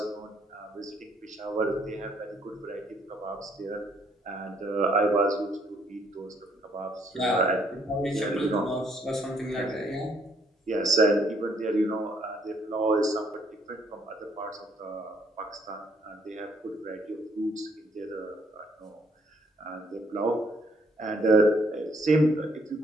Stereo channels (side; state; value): both; normal; correlation 0.68